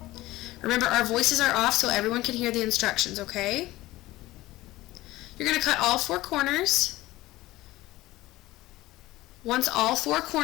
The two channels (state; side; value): quieter; right; 17.7 dB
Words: Remember, our voices are off so everyone can hear the instructions, okay? You're going to cut all 4 corners. Once all 4